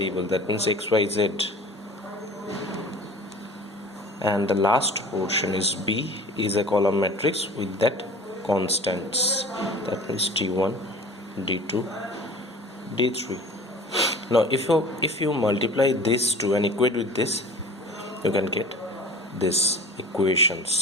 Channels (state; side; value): normal; both; correlation 0.42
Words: that means x, y, z, and the last portion is B is a column matrix with that constants, that means d1, d2, d3. Now if you multiply this two and equate with this, you can get this